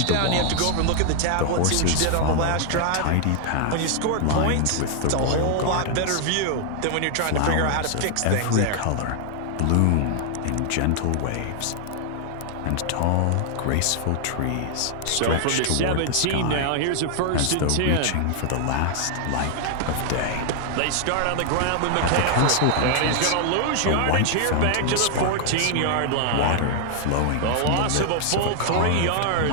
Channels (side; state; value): both; different; correlation 0.00